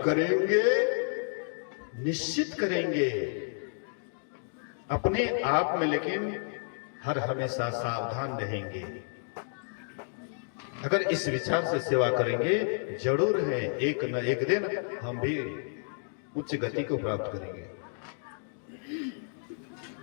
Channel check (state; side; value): silent; right; digital silence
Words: निश्चित करेंगे अपने आप में, लेकिन हर हमेशा सावधान रहेंगे। अगर इस विचार से सेवा करेंगे जरूर है एक न एक दिन हम भी उच्च गति को प्राप्त करेंगे।